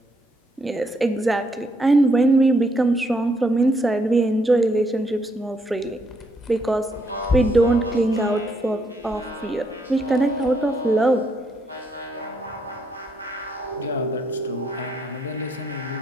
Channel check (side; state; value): both; normal; correlation 0.74